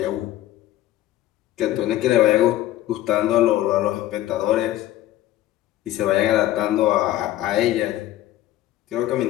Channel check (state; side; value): quieter; right; 14.2 dB